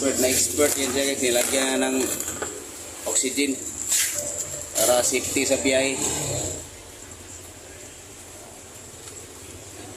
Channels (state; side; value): identical; both; correlation 1.00